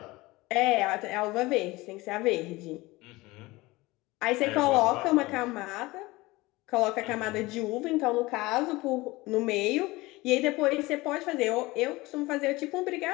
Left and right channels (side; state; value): right; quieter; 21.0 dB